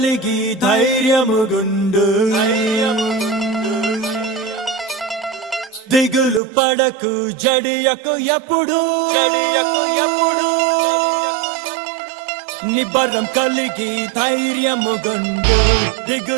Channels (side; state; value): left; drops out; at 6.4 s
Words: ధైర్యముగుండు దిగులు పడకు జడియకు ఎప్పుడు నిబ్బరం కలిగి ధైర్యముగుండు